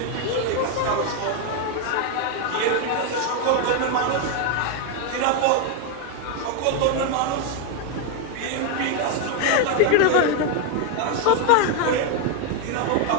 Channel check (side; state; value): both; different; correlation 0.01